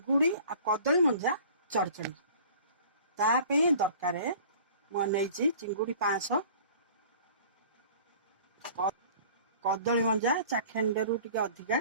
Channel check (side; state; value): both; inverted; correlation -0.47